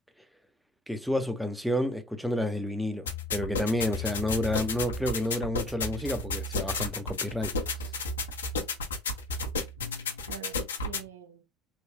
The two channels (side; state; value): both; normal; correlation 0.48